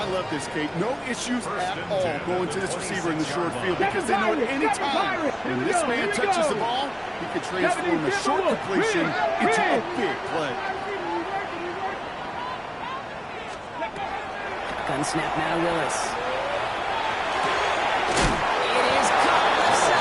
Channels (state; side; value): identical; both; correlation 1.00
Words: I love this, Kate. No issues at all going to this receiver in the short field because they know at any time when this man touches the ball, he can transform a short completion into a big play. Gun snap now to Willis. It is caught left